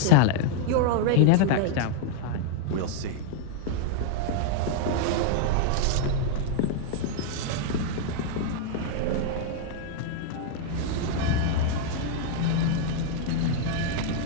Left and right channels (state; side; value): different; both; correlation 0.00